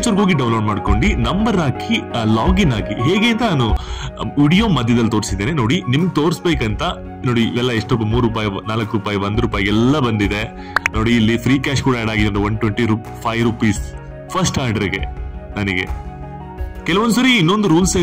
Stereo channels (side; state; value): both; identical; correlation 1.00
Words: ಹೋಗಿ ಡೌನ್ಲೋಡ್ ಮಾಡ್ಕೊಂಡು ನಂಬರ್ ಹಾಕಿ ಲಾಗಿನ್ ಆಗಿ ಹೇಗೆ ಅಂತ ನಾನು ವಿಡಿಯೋ ಮಧ್ಯದಲ್ಲಿ ತೋರಿಸಿದ್ದೇನೆ ನೋಡಿ. ನಿಮ್ಗೆ ತೋರಿಸ್ಬೇಕಂತ ನೋಡಿ, ಇವೆಲ್ಲ ಎಷ್ಟು ₹3, ₹4, ₹1 ಎಲ್ಲ ಬಂದಿದೆ ನೋಡಿ. ಇಲ್ಲಿ ಫ್ರೀ ಕ್ಯಾಶ್ ಕೂಡ ಆಡ್ ಆಗಿದೆ, ₹125 ಫಸ್ಟ್ ಆರ್ಡರ್ಗೆ. ನನಗೆ ಕೆಲವೊಂದ್ಸರಿ ಇನ್ನೊಂದು ರೂಲ್ಸ್